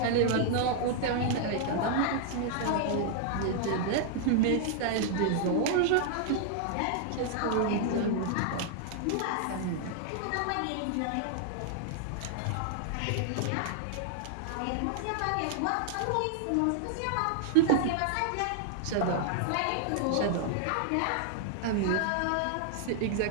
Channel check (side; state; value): both; different; correlation -0.01